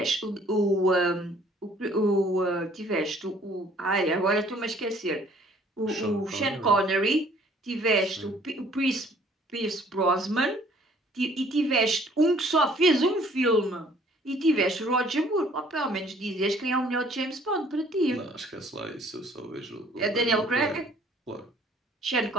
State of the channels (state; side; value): normal; both; correlation 0.58